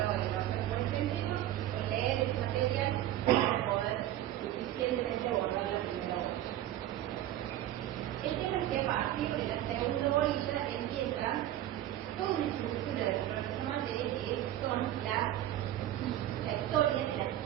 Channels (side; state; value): left; quieter; 13.1 dB